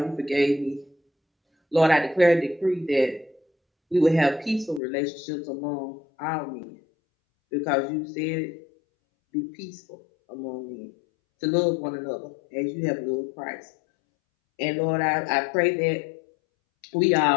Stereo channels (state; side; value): drops out; right; at 4.8 s